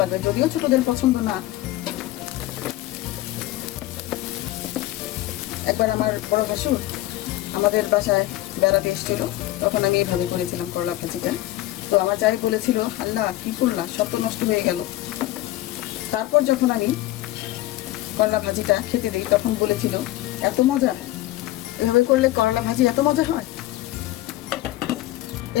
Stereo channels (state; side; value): quieter; right; 16.3 dB